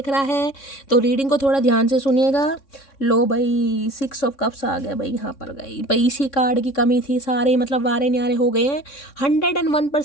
रहा है, तो रीडिंग को थोड़ा ध्यान से सुनिएगा। लो भाई 6 ऑफ कप्स आ गया भाई, यहाँ पर गई भाई। इसी कार्ड की कमी थी, सारे मतलब वारे न्यारे हो गए हैं।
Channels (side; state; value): right; late; 3.6 ms